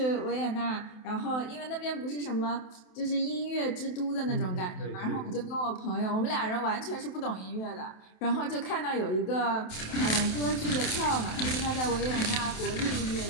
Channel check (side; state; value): right; late; 27 ms